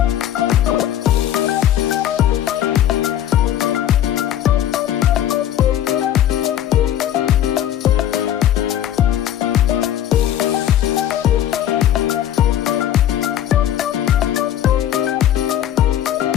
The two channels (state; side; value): quieter; right; 11.1 dB